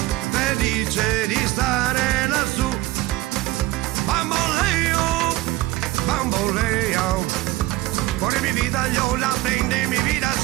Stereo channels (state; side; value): quieter; left; 18.1 dB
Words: felice di stare lassù. Bamboleo, bamboleo, por mi vida yo la prende mi vida